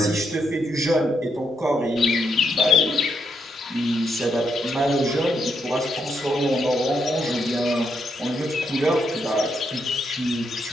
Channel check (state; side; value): normal; both; correlation 0.78